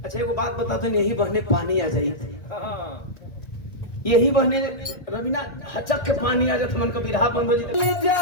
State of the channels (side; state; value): right; late; 1.6 ms